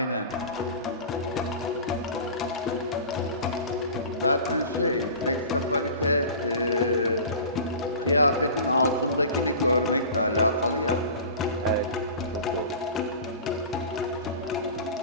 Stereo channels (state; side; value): inverted; both; correlation -0.37